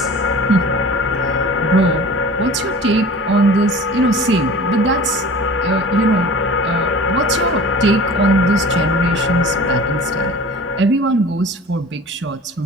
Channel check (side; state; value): both; normal; correlation 0.41